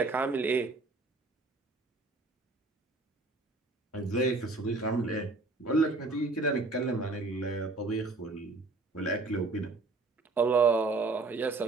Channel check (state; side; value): quieter; left; 3.5 dB